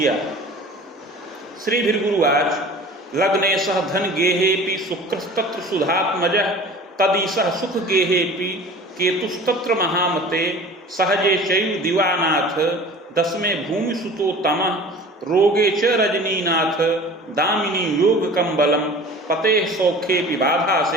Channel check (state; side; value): normal; both; correlation 0.42